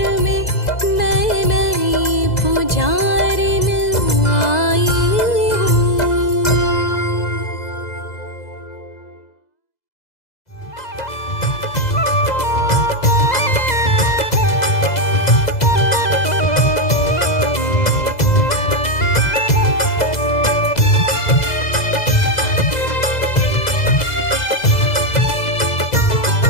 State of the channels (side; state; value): right; late; 2.0 ms